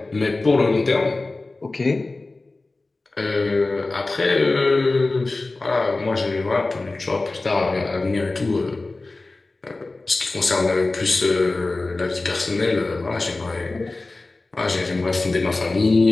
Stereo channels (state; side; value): quieter; right; 3.3 dB